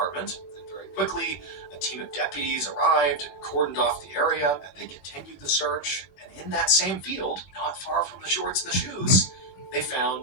and very quickly a team of deputies arrived and cordoned off the area, and they continued the search. And in that same field, not far from the shorts and the shoes, they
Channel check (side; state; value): right; late; 20 ms